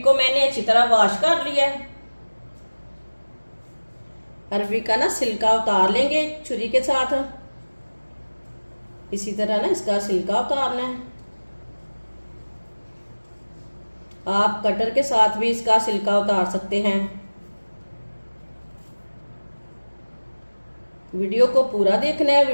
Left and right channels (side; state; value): both; inverted; correlation -1.00